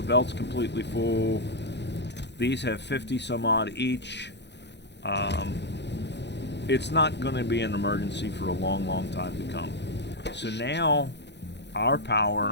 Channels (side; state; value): right; late; 0.50 ms